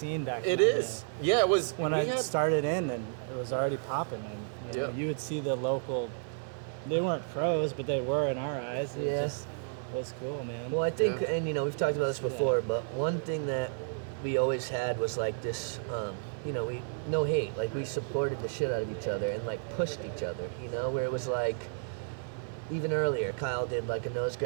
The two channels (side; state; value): left; silent; 56 dB below the other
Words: back It then. is. Yeah, it was. When I started in, and it was already popping. And you would see the local. They weren't pros, but they were in our eyes. It just was cool, man. Well, I think, and we've talked about this before, but one thing that we always had was like this, we no hate, like we supported the shit out of each other and like pushed each other, where it was like, even earlier, Kyle did like a nose